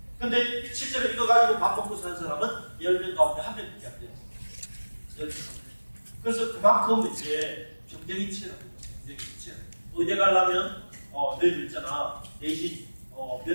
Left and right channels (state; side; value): inverted; both; correlation -1.00